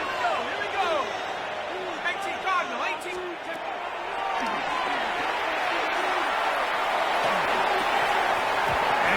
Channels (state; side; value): identical; both; correlation 1.00